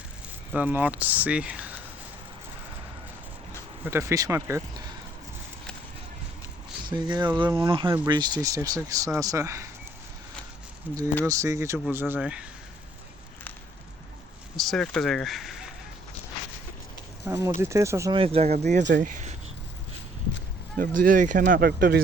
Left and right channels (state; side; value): normal; both; correlation 0.63